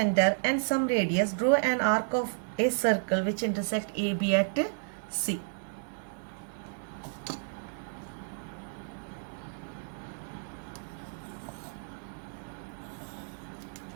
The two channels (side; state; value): left; silent; 57 dB below the other